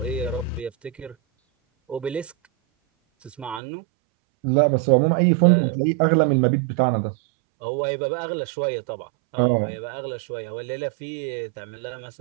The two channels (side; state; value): left; drops out; at 3.6 s